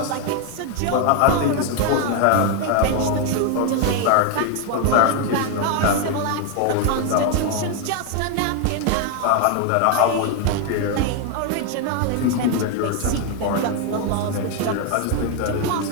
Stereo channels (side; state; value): both; different; correlation 0.01